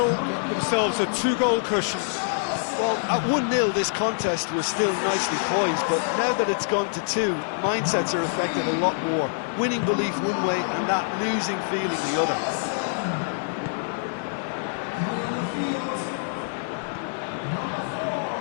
get themselves a two-goal cushion. Well, at 1-0 this contest was still nicely poised, but now that it's gone to 2, mindsets are affected a lot more. Winning belief one way and that losing feeling the other.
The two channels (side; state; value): right; silent; 61 dB below the other